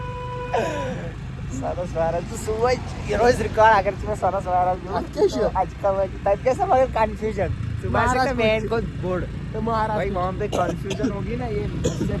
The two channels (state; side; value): identical; both; correlation 1.00